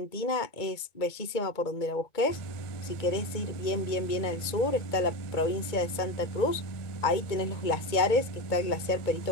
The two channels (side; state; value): right; late; 2.2 ms